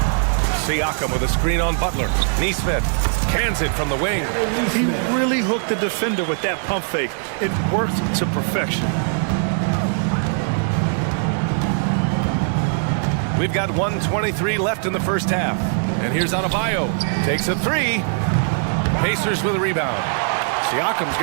Siakam with a screen on Butler. Nesmith cans it from the wing. He really hooked the defender with that pump fake. It worked to perfection. We've got 1:23 left in the first half. And here's Adebayo. Takes a 3. Pacers with a rebound. Siakam's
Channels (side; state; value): left; silent; digital silence